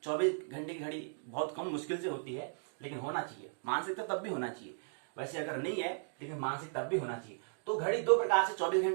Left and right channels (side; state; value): left; silent; digital silence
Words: घंटे की घड़ी बहुत कम मुश्किल से होती है, लेकिन होना चाहिए। मानसिक तो तब भी होना चाहिए, वैसे अगर नहीं है लेकिन मानसिक तब भी होना चाहिए। तो घड़ी दो प्रकार से 24